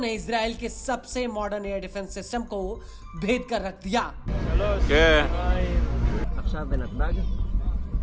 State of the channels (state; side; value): identical; both; correlation 1.00